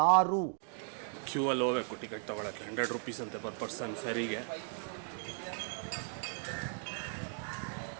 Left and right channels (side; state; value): left; silent; 54 dB below the other